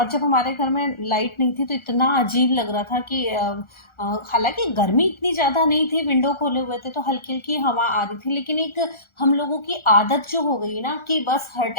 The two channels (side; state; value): right; late; 1.4 ms